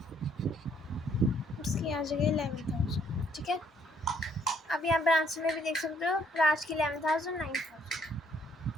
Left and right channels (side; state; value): both; normal; correlation 0.66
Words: इसकी आ जाएगी 11,000। ठीक है, अब यहाँ पर आंसर में भी देख सकते हो राज की 11,000 9,000।